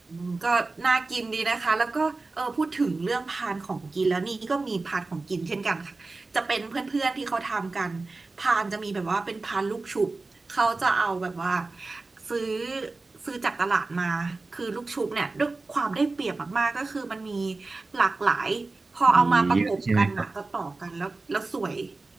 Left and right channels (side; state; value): left; quieter; 3.5 dB